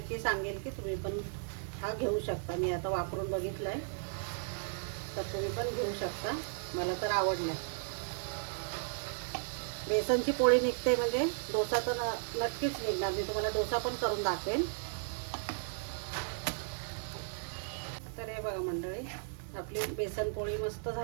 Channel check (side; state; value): left; silent; digital silence